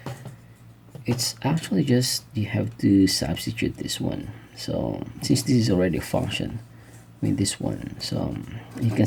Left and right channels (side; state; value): both; identical; correlation 1.00